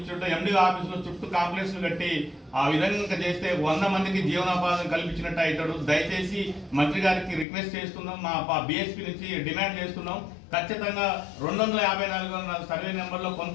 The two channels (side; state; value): right; drops out; at 7.5 s